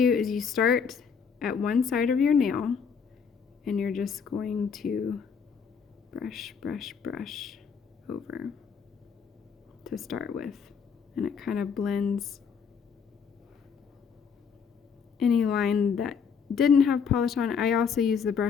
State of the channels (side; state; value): right; quieter; 6.3 dB